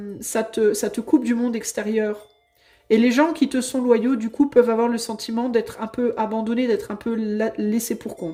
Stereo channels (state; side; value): identical; both; correlation 1.00